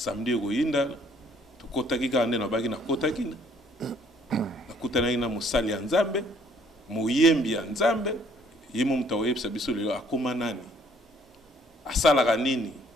goyinda to kotaki ka na bagi na kotaki. Nakutana ina musali ya Nzambe, muyembi ya Nzambe, yimo mutawebisa biso lelo akoma nani? Asalaka nini?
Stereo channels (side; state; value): both; normal; correlation 0.62